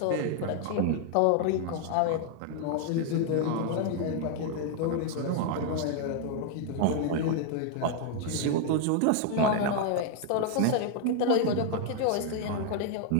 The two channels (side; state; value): both; different; correlation 0.00